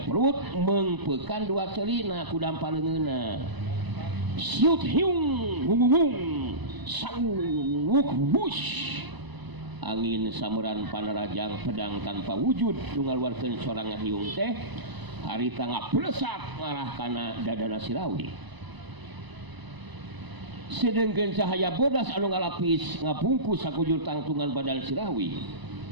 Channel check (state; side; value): late; left; 1.0 ms